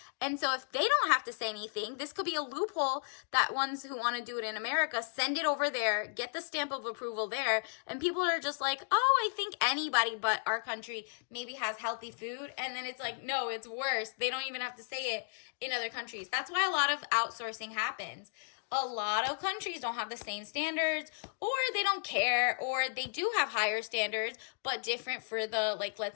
And so if they don't have to say anything, this could be a loophole that ones who want to do it in America send it over there, get the stamp of approval there. And people are just oh, I think anybody but our country maybe has healthy food. And then it's no, it's worse. They don't even have to say it in other countries. That's why a lot of outsourcing happens. a lot of countries don't have the same standards, or they don't care, or they do have higher standards but different for the, like,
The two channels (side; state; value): right; silent; digital silence